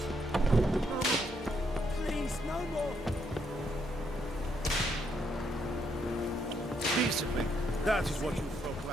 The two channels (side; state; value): both; normal; correlation 0.75